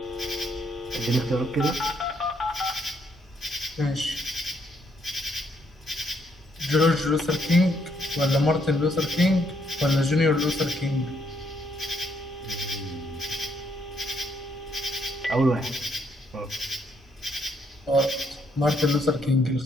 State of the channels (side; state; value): both; normal; correlation 0.72